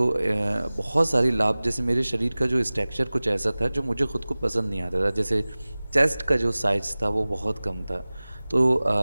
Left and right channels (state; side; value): inverted; both; correlation -0.99